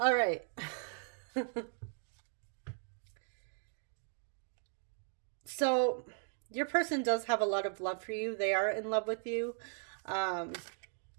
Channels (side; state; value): left; silent; 53 dB below the other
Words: right. So your person does have a lot of love for you. They are in love with you. Um,